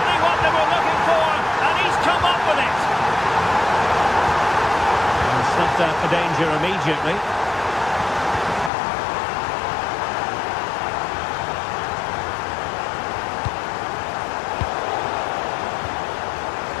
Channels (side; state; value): right; drops out; at 8.7 s